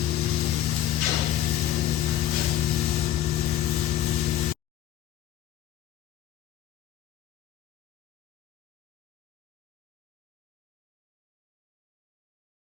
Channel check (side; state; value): right; quieter; 12.1 dB